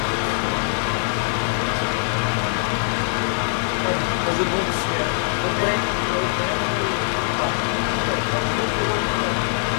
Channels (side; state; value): right; silent; 57 dB below the other